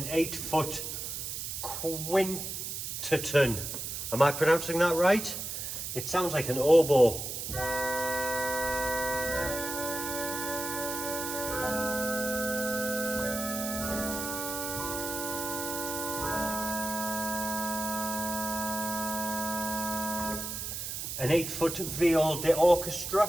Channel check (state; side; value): noise; right; hiss, 5 dB below the sound